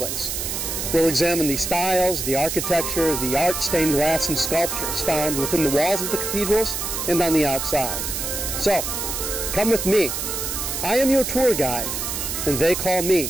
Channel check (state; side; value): noise; right; hiss, 3 dB below the sound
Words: We'll examine the styles, the architecture, the art, stained glass, and sculptures found within the walls of the cathedrals and on the outside. So, come with me. I am your tour guide, and they call me